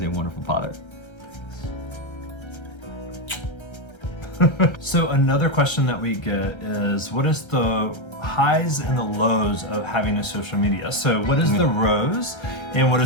a wonderful father. So another question that we get is, what is the highs and the lows of having a social media? So what is the rose and what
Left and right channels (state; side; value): late; right; 1.3 ms